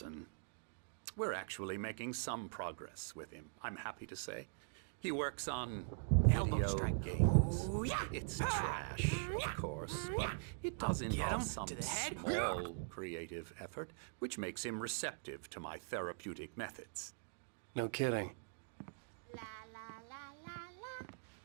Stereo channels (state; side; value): silent; left; digital silence